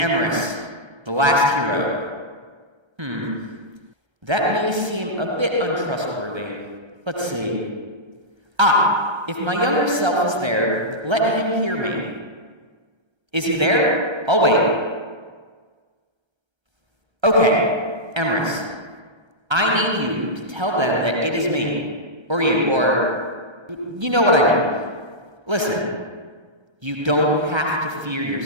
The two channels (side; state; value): left; late; 1.3 ms